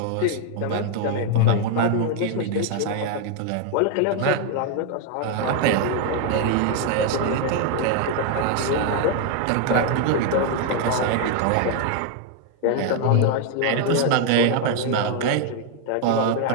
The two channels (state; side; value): different; both; correlation 0.01